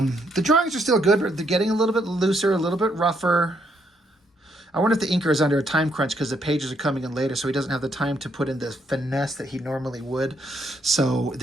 drawings are still good, but they're getting a little bit looser, a little bit rougher. I wonder if the inker is under a time crunch because the pages are coming in later, so he doesn't have the time to put in the finesse that he normally would. So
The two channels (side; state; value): both; normal; correlation 0.74